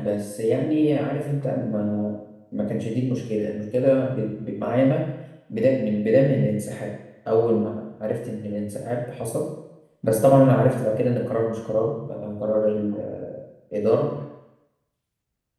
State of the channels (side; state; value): both; identical; correlation 1.00